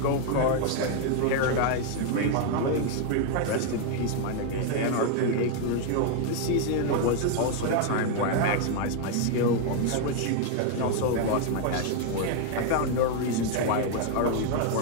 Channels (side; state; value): both; different; correlation 0.00